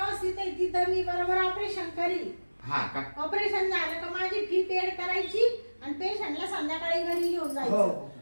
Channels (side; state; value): both; inverted; correlation -1.00